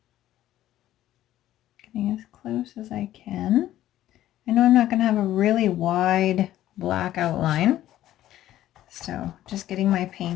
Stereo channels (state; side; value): quieter; right; 13.4 dB